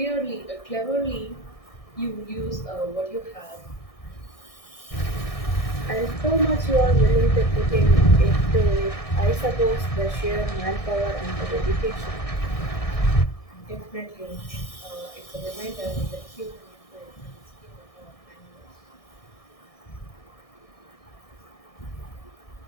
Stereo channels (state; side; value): late; right; 1.6 ms